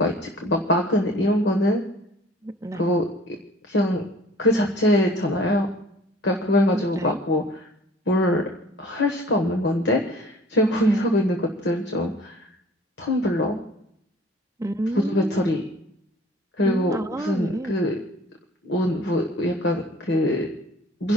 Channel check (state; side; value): normal; both; correlation 0.50